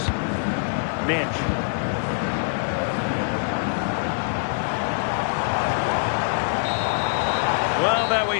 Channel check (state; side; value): silent; right; digital silence